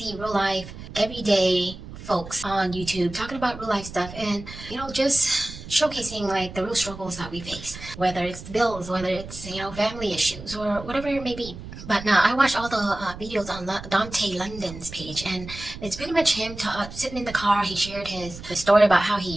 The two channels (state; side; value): noise; right; rumble, 13 dB below the sound